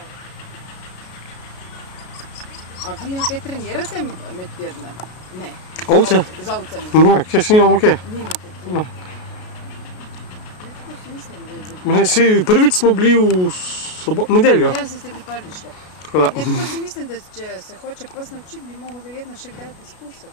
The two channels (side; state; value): right; late; 33 ms